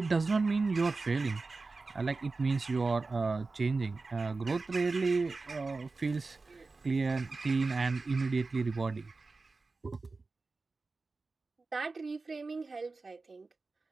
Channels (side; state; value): left; quieter; 3.8 dB